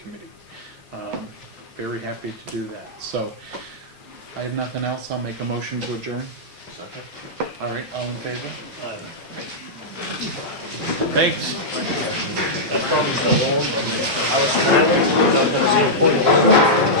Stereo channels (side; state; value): both; normal; correlation -0.10